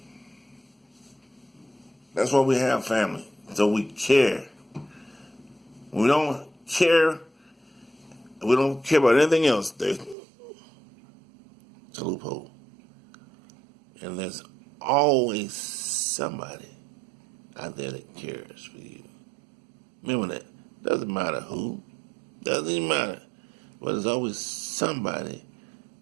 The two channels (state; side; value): drops out; left; at 10.2 s